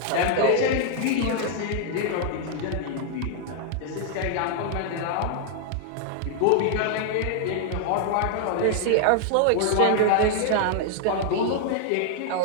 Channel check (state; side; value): different; both; correlation 0.00